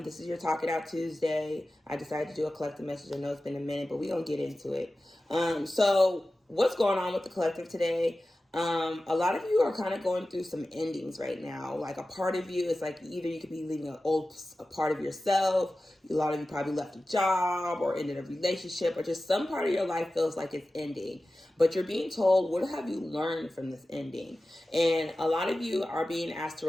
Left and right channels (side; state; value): both; normal; correlation 0.95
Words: is your Talk It Out Tuesday. I decided to do a collective message. I know it's been a minute, but we're going to get into it. So what's going on with the collective today? A lot of you are kind of going through some endings right now. Like a part of you is like either you could be leaving a part of yourself. A lot of you probably left a job or ended a relationship, or just some part of your life feels like it's ending. But you're being told, what have you learned from this ending? And a lot of you are being asked to